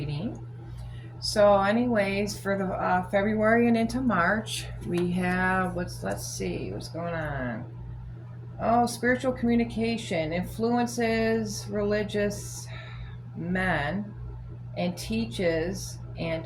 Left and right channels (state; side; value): identical; both; correlation 1.00